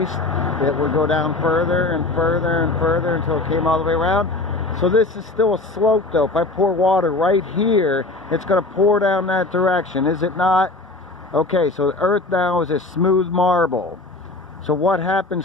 it would go down further and further and further until it came all the way around. So this is still a slope though. If I pour water right here, it's going to pour down that direction, is it not? Okay, so the earth now is a smooth marble. So what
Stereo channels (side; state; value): right; quieter; 3.1 dB